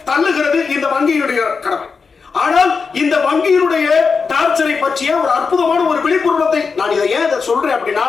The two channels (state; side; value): quieter; right; 5.1 dB